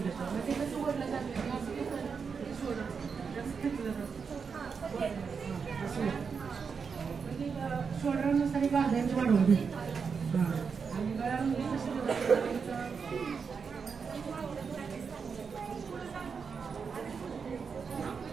घेतो. मग ते कसं वडलं जातं शोल्डर जास्त घेतलं जातं असं शोल्डरनुसार एक अर्धा इंच वाढवून घेतो. आणि गळ्यामध्ये कसं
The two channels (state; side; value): quieter; left; 5.8 dB